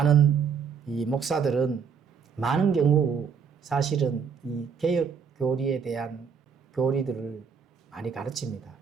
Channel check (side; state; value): left; quieter; 6.5 dB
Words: 이 목사들은 많은 경우 사실은 이 개혁 교리에 대한 교리들을 많이 가르칩니다.